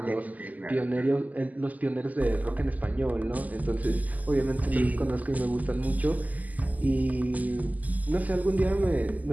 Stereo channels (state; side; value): late; left; 0.079 ms